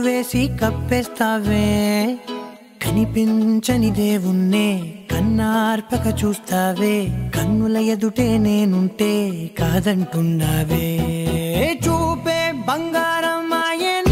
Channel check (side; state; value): both; identical; correlation 1.00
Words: వేసి కప్పేస్తావే. కనిపించని దేవుణ్ణే కన్నార్పక చూస్తావే, కన్నుల ఎదుటే నేనుంటే కాదంటున్నావే. చూపే బంగారం